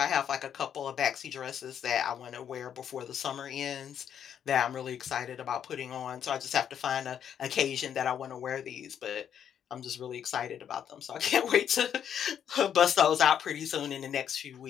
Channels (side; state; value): right; quieter; 8.9 dB